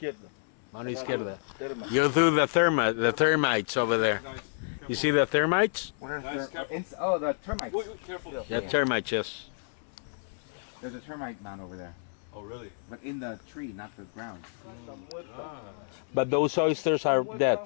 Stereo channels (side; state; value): right; silent; 58 dB below the other